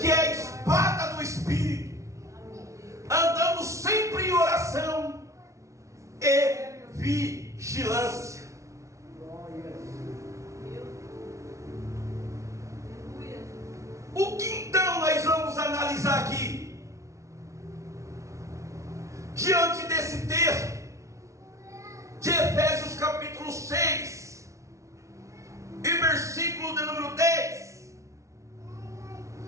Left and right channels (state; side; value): late; left; 0.14 ms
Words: é a espada do Espírito, andando sempre em oração e vigilância. O que então nós vamos analisar aqui? Diante desse texto de Efésios capítulo 6 e versículo de número 10,